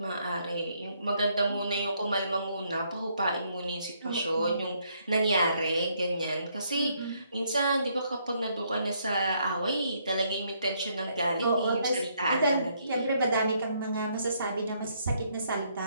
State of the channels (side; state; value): both; inverted; correlation -0.71